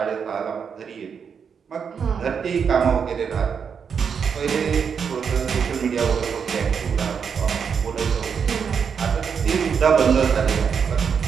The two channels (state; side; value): quieter; left; 6.7 dB